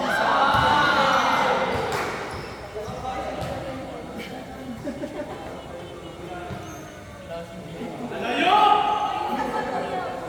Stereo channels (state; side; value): identical; both; correlation 1.00